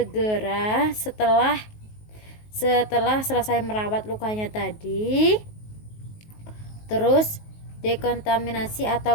setelah selesai merawat lukanya tadi. Terus dekontaminasi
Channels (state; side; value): late; right; 19 ms